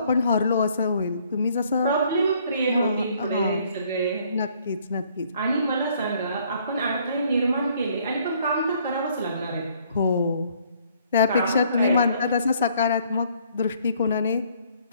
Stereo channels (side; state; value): both; inverted; correlation -0.63